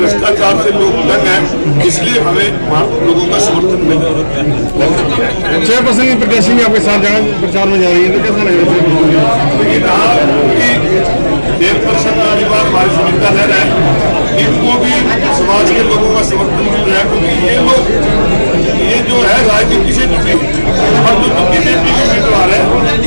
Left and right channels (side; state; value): both; inverted; correlation -1.00